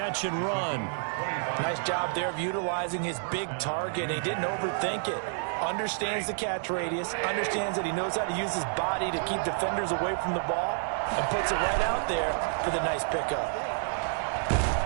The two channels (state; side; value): silent; left; digital silence